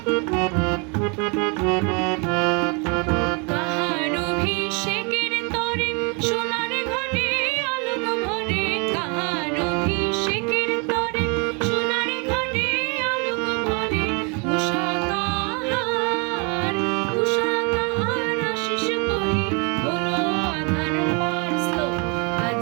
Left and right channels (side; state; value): left; quieter; 33.1 dB